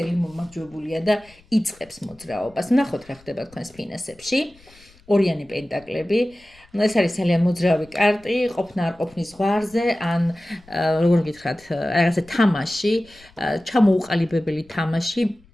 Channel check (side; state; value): left; noise; rumble, 27 dB below the sound